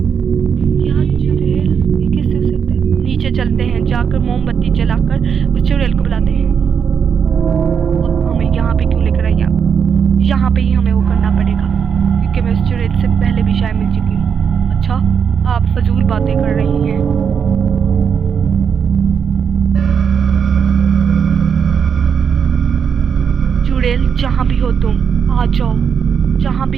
क्या चुड़ैल? ये कैसे हो सकता है? नीचे चलते हैं, जाकर मोमबत्ती जलाकर उस चुड़ैल को बुलाते हैं। अब हमें यहाँ पे क्यों लेकर आई आप? यहाँ पे ही हमें वो करना पड़ेगा क्योंकि मैं उस चुड़ैल से पहले भी शायद मिल चुकी हूँ। अच्छा आप फजूल बातें कर रही हैं। चुड़ैल जहाँ भी हो तुम आ जाओ, जहाँ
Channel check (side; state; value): left; quieter; 7.0 dB